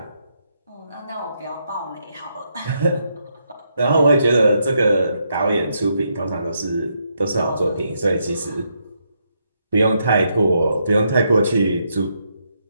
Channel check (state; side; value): inverted; both; correlation -0.78